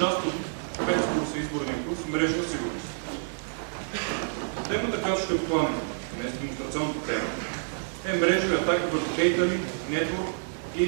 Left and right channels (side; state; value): left; silent; digital silence